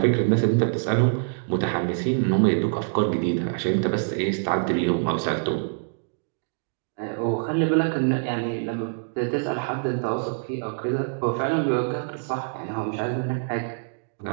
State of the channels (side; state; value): left; silent; digital silence